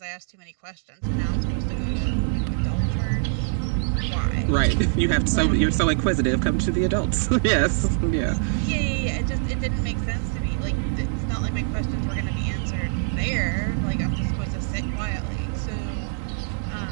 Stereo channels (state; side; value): silent; left; digital silence